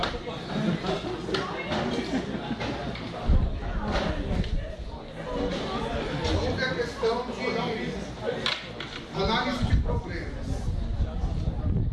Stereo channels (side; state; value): both; identical; correlation 1.00